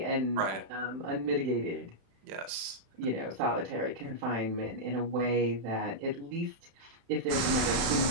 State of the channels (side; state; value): left; late; 36 ms